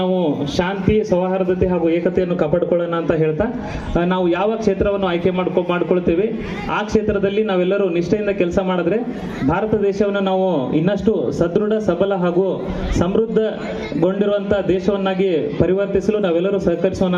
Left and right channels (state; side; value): identical; both; correlation 1.00